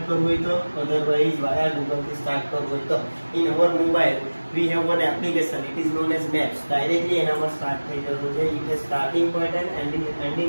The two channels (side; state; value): both; inverted; correlation -1.00